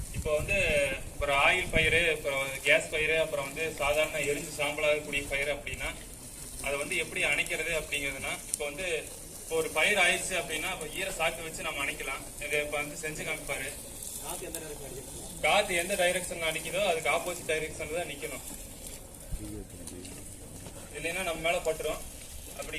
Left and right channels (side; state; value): both; identical; correlation 1.00